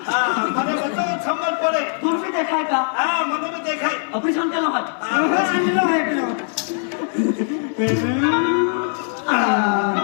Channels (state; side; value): silent; right; 64 dB below the other